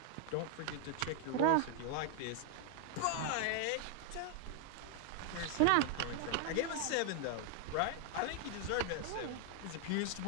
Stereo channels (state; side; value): different; both; correlation 0.00